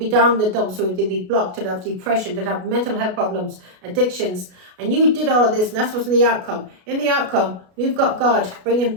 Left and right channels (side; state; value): left; late; 33 ms